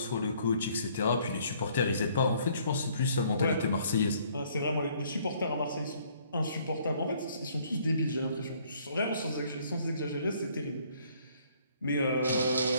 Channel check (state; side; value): inverted; both; correlation -0.63